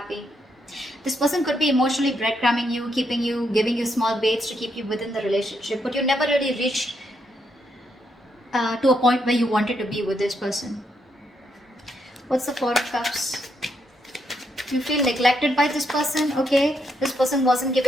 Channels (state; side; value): normal; both; correlation 0.78